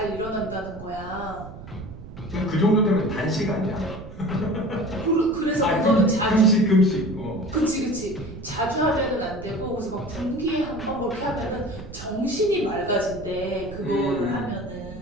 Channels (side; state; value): right; noise; rumble, 14 dB below the sound